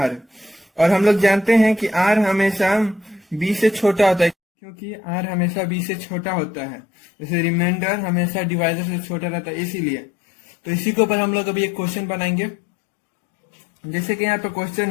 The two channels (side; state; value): right; drops out; at 4.4 s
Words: और हम लोग जानते हैं कि r हमेशा b से छोटा होता है क्योंकि r हमेशा b से छोटा होता है. जैसे रिमाइंडर हमेशा डिवाइजर से छोटा रहता है इसीलिए. तो इसी के ऊपर हम लोग अभी एक क्वेश्चन बनाएंगे. जैसे कि यहाँ पे क्वेश्चन